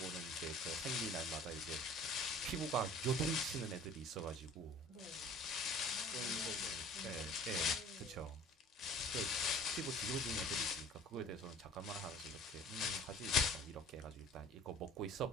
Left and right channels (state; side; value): normal; both; correlation 0.47